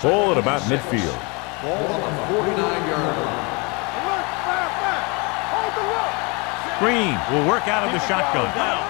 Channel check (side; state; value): right; quieter; 29.7 dB